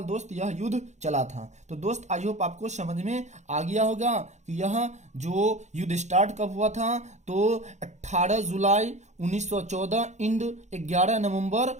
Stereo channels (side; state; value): left; late; 0.34 ms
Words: दोस्त यह युद्ध चला था। तो दोस्त आई होप आपको समझ में आ गया होगा कि यह जो युद्ध स्टार्ट कब हुआ था, तो 18 जुलाई 1914 इंड 11 नवंबर